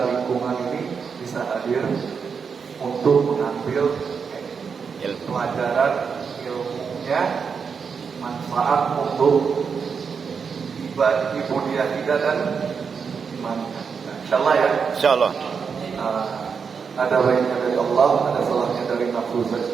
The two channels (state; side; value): quieter; left; 6.0 dB